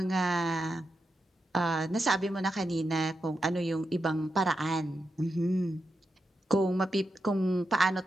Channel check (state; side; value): normal; both; correlation 0.87